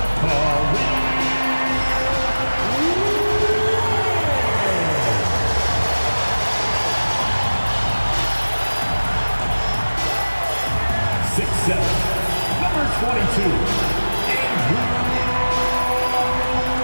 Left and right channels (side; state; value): both; inverted; correlation -1.00